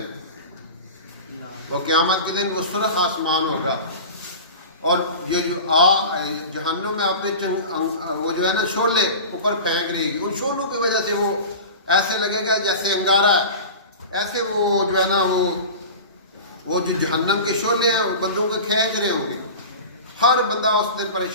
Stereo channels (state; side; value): inverted; both; correlation -0.32